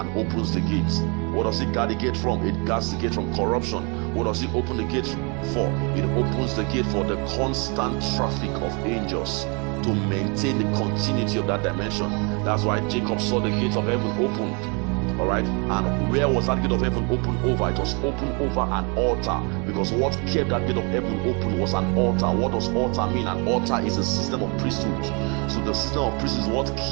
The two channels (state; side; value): quieter; left; 33.1 dB